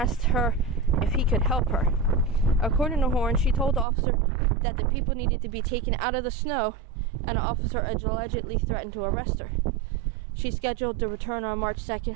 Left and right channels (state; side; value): drops out; left; at 3.9 s